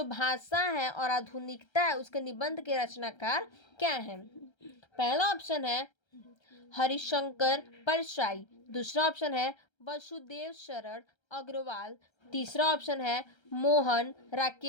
भाषा है और आधुनिकता है उसके निबंध के रचनाकार क्या हैं? पहला ऑप्शन है हरिशंकर परसाई, दूसरा ऑप्शन है वसुदेव शरण अग्रवाल, तीसरा ऑप्शन है मोहन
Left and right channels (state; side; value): late; right; 1.3 ms